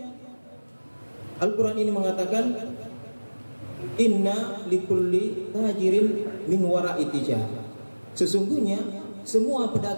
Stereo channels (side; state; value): both; inverted; correlation -1.00